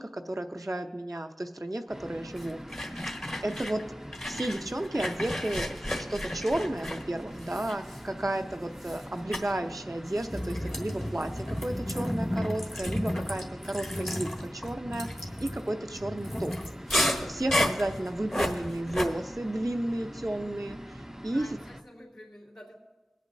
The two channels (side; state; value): both; normal; correlation 0.93